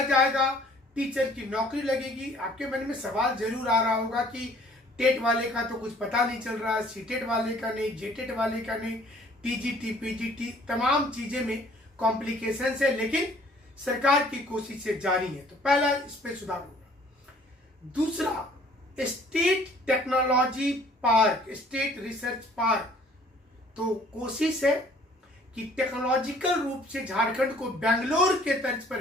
जाएगा, टीचर की नौकरी लगेगी। आपके मन में सवाल जरूर आ रहा होगा कि टेट वाले का तो कुछ पता नहीं चल रहा, सीटेट वाले का नहीं, जेटेट वाले का नहीं, टीजीटी पीजीटी तमाम चीजें में कॉम्प्लिकेशन है, लेकिन सरकार की कोशिशें जारी है। तो पहला इस पे सुधार होगा। दूसरा, state technology park, state research park. तो कोशिश है कि टेक्नोलॉजिकल रूप से झारखंड को बेंगलोर के तर्ज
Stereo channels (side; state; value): both; normal; correlation 0.56